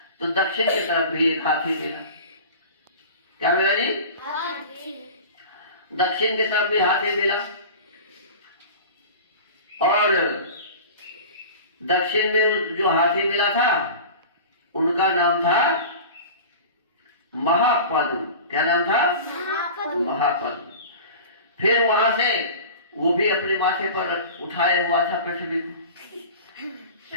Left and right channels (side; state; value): both; inverted; correlation -0.36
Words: तो दक्षिण की तरफ भी एक हाथी मिला। क्या मिला जी? दक्षिण की तरफ भी हाथी मिला, और दक्षिण में जो हाथी मिला था उनका नाम था महापद्म। क्या नाम था? महापद्म। फिर वहां से वो भी अपने माथे पर उठाए हुआ था पृथ्वी को।